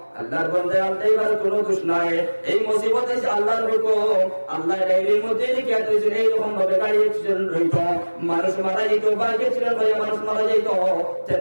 আল্লাহর বন্দে ড্রাইভার কোনো দোষ নাই এই মুসিবত এসে আল্লাহর হুকুম আল্লাহ ডায়েরির মধ্যে লিখে দিয়েছেন এইরকম ভাবে গাড়ি অ্যাক্সিডেন্ট হইত মানুষ মারা যেত বাইক অ্যাক্সিডেন্ট হয়ে মানুষ মারা যেত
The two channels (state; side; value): inverted; both; correlation -1.00